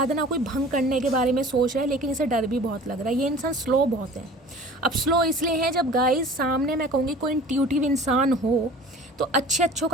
कोई भंग करने के बारे में सोच रहा है, लेकिन इसे डर भी बहुत लग रहा है। ये इंसान स्लो बहुत है। अब स्लो इसलिए है, जब गाइज सामने मैं कहूँगी कोई इंट्यूटिव इंसान हो तो अच्छों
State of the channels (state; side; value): normal; both; correlation 0.44